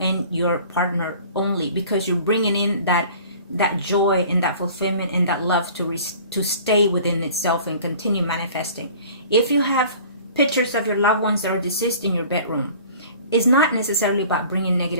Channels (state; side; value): inverted; both; correlation -0.47